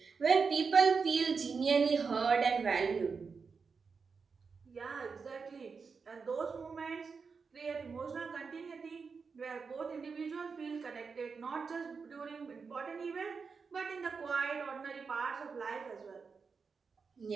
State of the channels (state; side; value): quieter; left; 5.2 dB